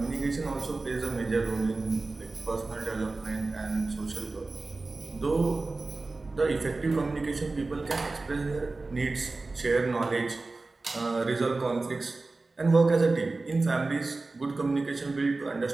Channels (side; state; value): left; quieter; 3.5 dB